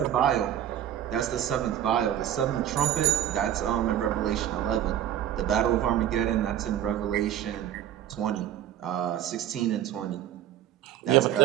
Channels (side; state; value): left; quieter; 11.3 dB